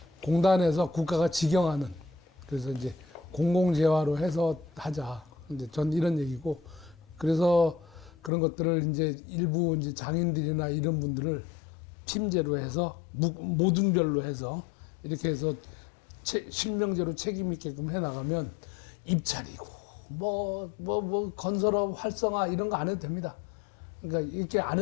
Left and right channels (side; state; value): right; drops out; at 8.3 s